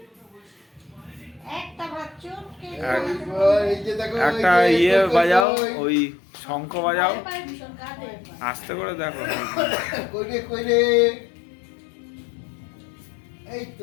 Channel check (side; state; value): right; drops out; at 5.5 s